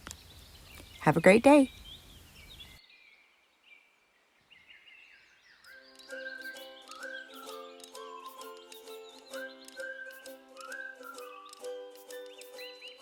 Have a great day.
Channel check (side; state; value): both; identical; correlation 1.00